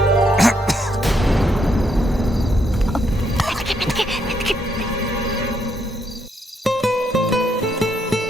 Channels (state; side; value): normal; both; correlation 0.75